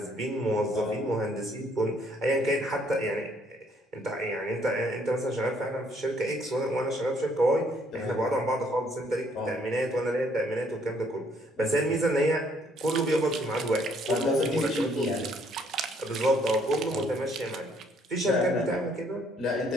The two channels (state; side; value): normal; both; correlation 0.66